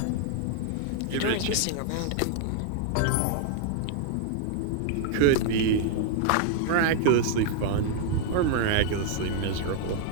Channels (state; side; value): different; both; correlation 0.00